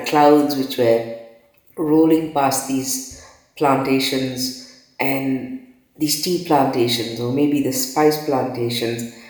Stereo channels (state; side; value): identical; both; correlation 1.00